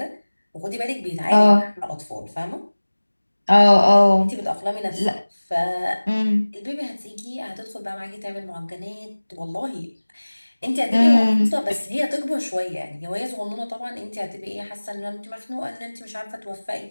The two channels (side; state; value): both; inverted; correlation -1.00